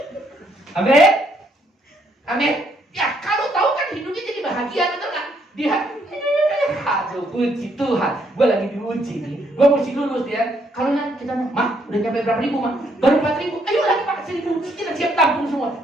Amin. Amin. Ya kalau tahu kan hidupnya jadi bahagia, betul nggak? Dia, aduh puji Tuhan, gue lagi diuji nih, gue mesti lulus ya. Kalau nanti kita, Mak, udah nyampe berapa ribu, Mak? Baru 4.000, ayo lagi Pak, 1.000, kita siap tampung semua.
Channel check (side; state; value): both; normal; correlation 0.71